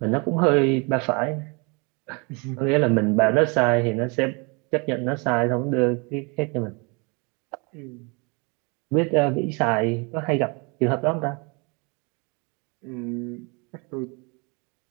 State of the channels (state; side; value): quieter; left; 31.1 dB